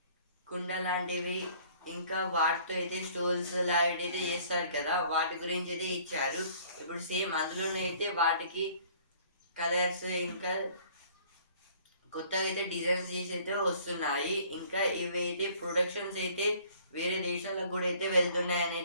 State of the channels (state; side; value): inverted; both; correlation -0.55